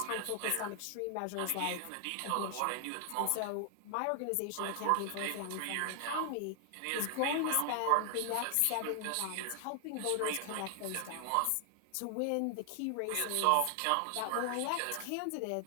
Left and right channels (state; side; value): different; both; correlation 0.00